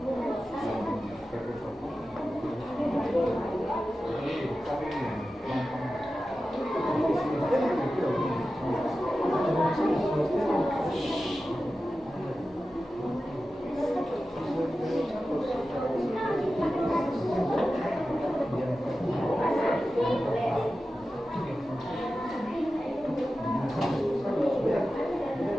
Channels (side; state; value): both; normal; correlation 0.93